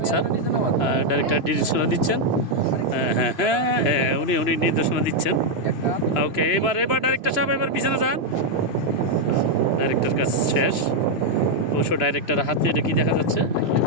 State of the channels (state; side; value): late; right; 3.0 ms